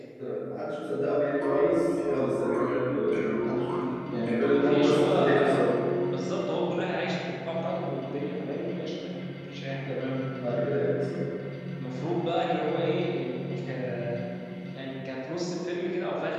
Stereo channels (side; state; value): both; identical; correlation 1.00